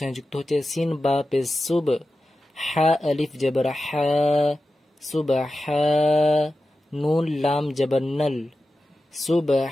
যুক্ত হচ্ছে। সিন বা পেশ সুব, হা আলিফ জবর হা, সুবহা, নুন লাম জবর নল,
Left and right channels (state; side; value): normal; both; correlation 0.93